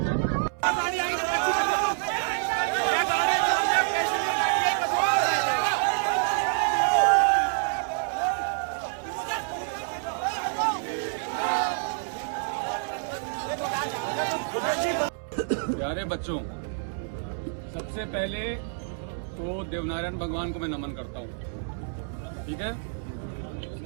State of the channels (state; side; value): silent; left; 60 dB below the other